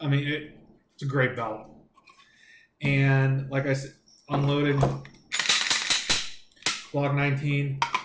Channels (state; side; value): identical; both; correlation 1.00